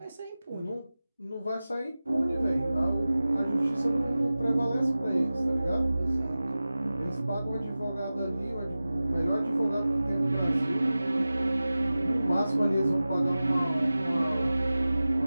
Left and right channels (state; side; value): inverted; both; correlation -0.96